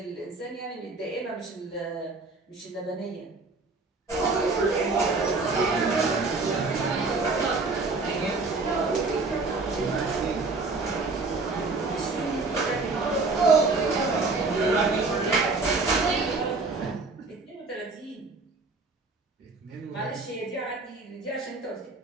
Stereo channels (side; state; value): left; quieter; 3.7 dB